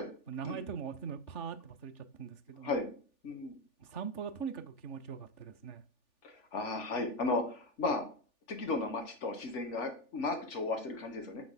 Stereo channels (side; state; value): right; late; 3.4 ms